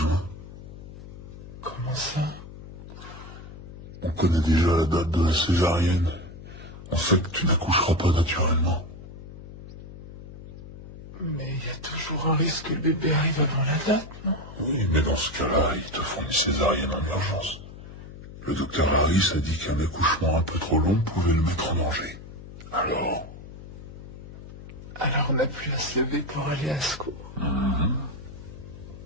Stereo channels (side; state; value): left; noise; hum, 14 dB below the sound